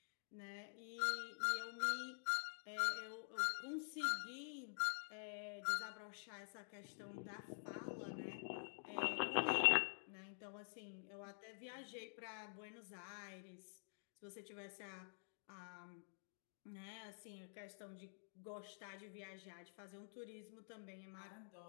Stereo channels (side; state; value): right; silent; digital silence